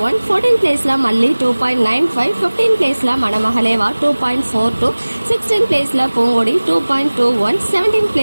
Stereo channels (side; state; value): both; inverted; correlation -1.00